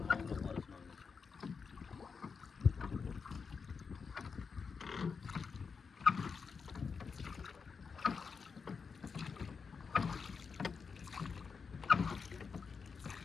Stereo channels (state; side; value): quieter; right; 5.5 dB